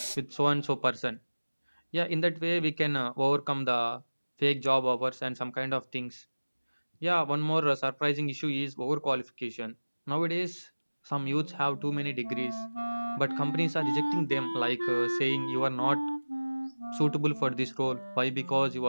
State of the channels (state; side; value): inverted; both; correlation -1.00